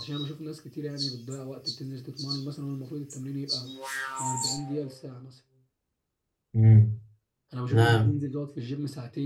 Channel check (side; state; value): both; identical; correlation 1.00